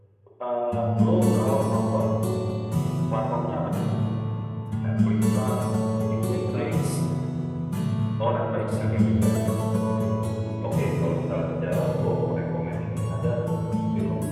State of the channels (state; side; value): identical; both; correlation 1.00